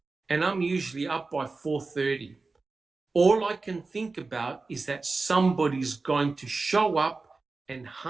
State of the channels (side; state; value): left; quieter; 3.8 dB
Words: and I'm usually up by 4:30. All I can think about is that somebody's going to show up and